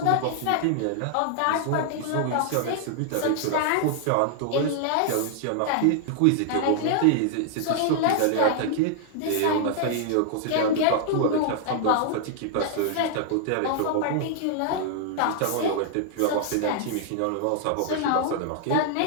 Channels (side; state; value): both; different; correlation -0.01